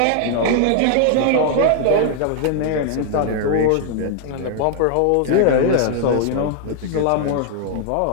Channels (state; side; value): different; both; correlation 0.00